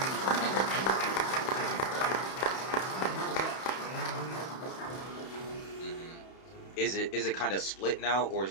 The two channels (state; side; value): late; right; 31 ms